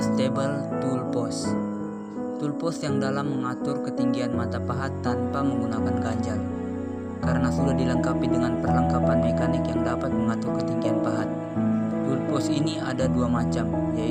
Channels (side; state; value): both; identical; correlation 1.00